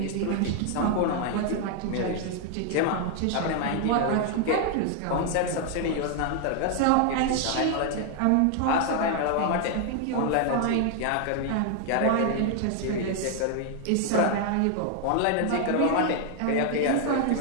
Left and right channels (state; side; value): different; both; correlation 0.00